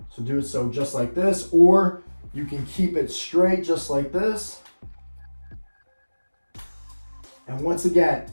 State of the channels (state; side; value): inverted; both; correlation -1.00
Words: So do it so just like this, or you can keep it straight just like this. And once again,